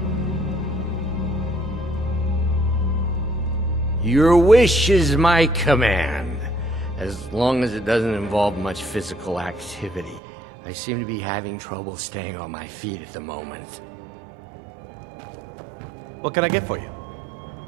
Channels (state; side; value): drops out; left; at 10.2 s